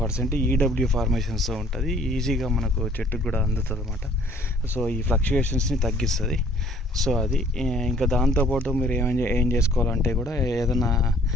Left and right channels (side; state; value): both; normal; correlation 0.57